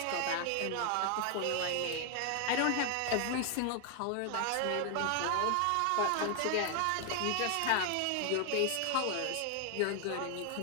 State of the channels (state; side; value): different; both; correlation 0.00